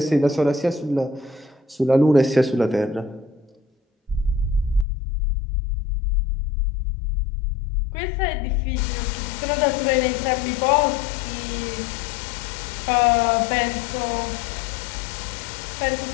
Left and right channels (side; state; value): right; drops out; at 4.9 s